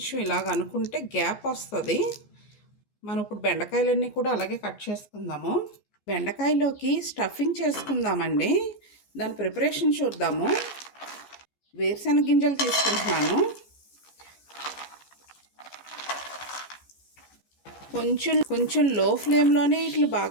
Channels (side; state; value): right; late; 14 ms